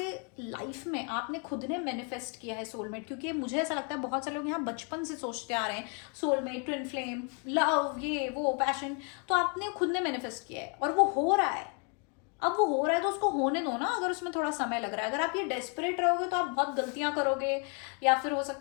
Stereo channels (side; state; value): right; quieter; 36.6 dB